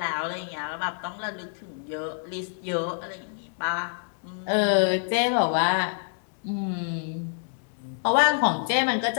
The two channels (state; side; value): silent; right; digital silence